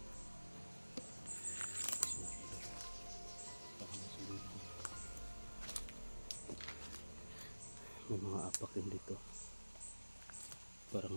Baka masulilo. May mga apak din dito.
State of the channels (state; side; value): inverted; both; correlation -1.00